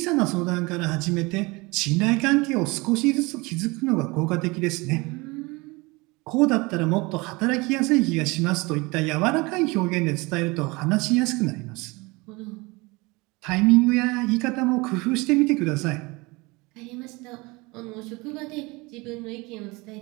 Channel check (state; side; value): quieter; left; 24.7 dB